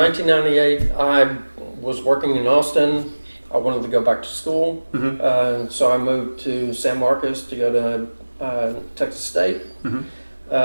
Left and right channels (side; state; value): both; inverted; correlation -1.00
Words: I was working in Austin. I wanted to go back to school. So I moved to San Marcos to go to Texas State.